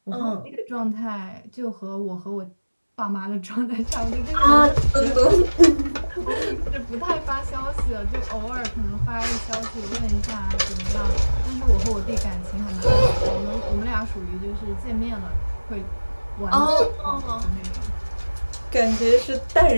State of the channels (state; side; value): inverted; both; correlation -1.00